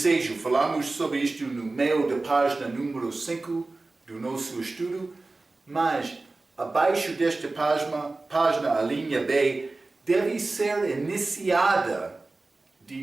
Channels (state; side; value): quieter; left; 3.3 dB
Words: Falamos sobre isto no meio da página número 5 do nosso estudo, mas abaixo desta página, a linha B, deve ser iniciada